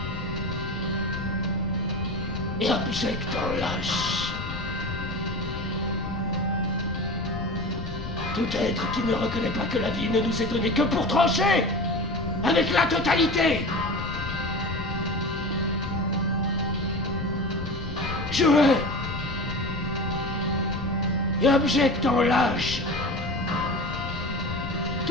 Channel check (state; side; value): noise; left; rumble, 8 dB below the sound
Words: et abjecte en lâche tout être qui ne reconnaît pas que la vie ne nous est donnée que pour trancher avec la totalité. Je hais et abjecte en lâche